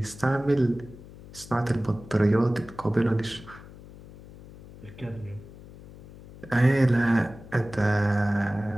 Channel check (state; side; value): noise; left; hum, 18 dB below the sound